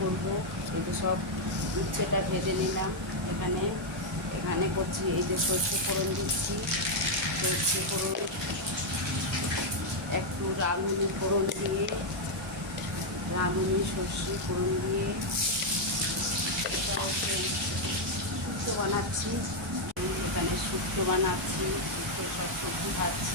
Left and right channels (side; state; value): both; normal; correlation 0.00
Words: করব। এই যে সব উচ্ছেটা ভেজে নিলাম। এখানে এখানে করছি, এই যে সর্ষে ফোড়ন দিচ্ছি। সর্ষে ফোড়ন একটু রাঁধুনি ফোড়ন দিয়ে, রাঁধুনি সর্ষে ফোড়ন দিয়ে এটা হচ্ছে শুক্তো বানাচ্ছি। এখানে শুক্তো বানাচ্ছি, শুক্তো সব সবজি